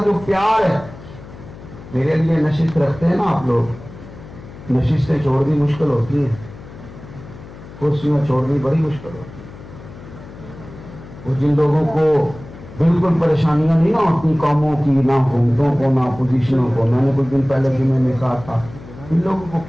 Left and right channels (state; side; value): noise; left; hum, 17 dB below the sound